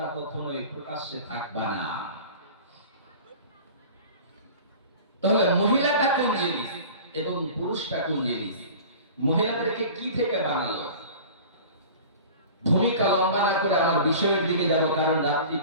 কখনোই প্রকাশ্যে থাকবা না। তাহলে মহিলাটা কোন জিনিস এবং পুরুষটা কোন জিনিস? মহিলাদেরকে কি থেকে বানালো? ভূমিকা লম্বা না করে আমার বিষয়ের দিকে যাব, কারণ রাত্রি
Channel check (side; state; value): both; inverted; correlation -0.40